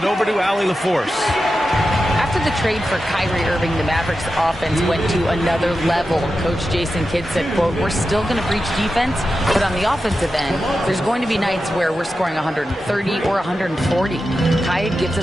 over to Allie LaForce. After the trade for Kyrie Irving, the Mavericks offense went to another level. Coach Jason Kidd said, quote, "We're still going to breach defense, but on the offensive end, there's going to be nights where we're scoring 130 or 140. Kai gives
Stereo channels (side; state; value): both; normal; correlation 0.91